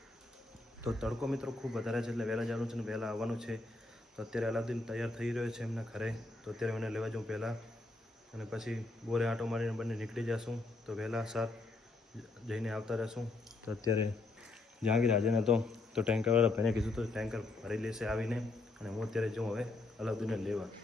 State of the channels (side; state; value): right; quieter; 3.2 dB